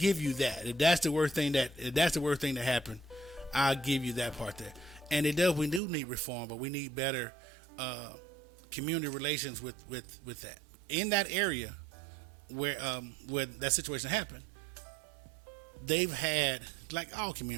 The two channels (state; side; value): drops out; left; at 5.8 s